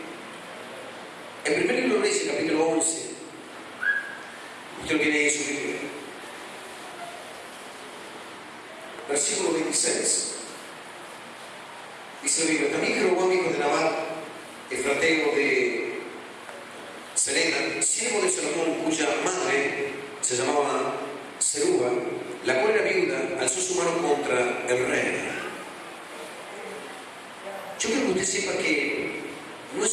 en primer libro de Reyes, capítulo 11, usted lo tiene ahí en su Biblia, versículo 26. Dice la Biblia: también Jeroboam, hijo de Nabat, efrateo de Sereda, siervo de Salomón, cuya madre se llamaba Zeruba, la cual era viuda, alzó su mano contra el rey. Yo quiero que usted sepa que no es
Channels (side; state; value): both; identical; correlation 1.00